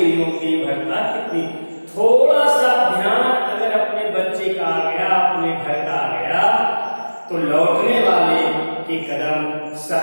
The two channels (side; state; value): both; inverted; correlation -1.00